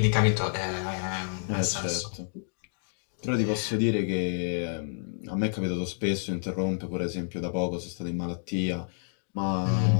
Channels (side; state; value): right; silent; digital silence